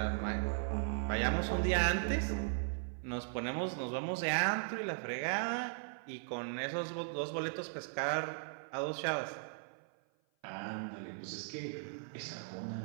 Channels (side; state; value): left; silent; 52 dB below the other